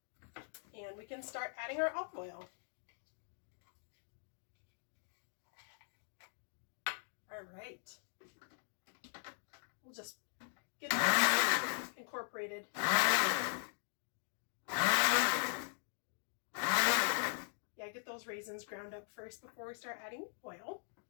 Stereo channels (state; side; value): silent; right; digital silence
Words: And we can start adding our olive oil. All right. We'll just get that incorporated. Yeah, get those raisins ground up first before we start adding oil.